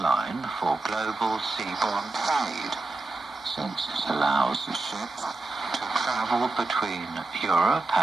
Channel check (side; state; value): left; quieter; 3.2 dB